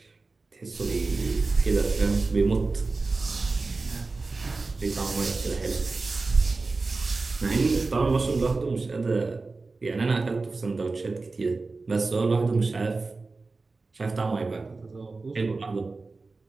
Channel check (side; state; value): left; quieter; 3.8 dB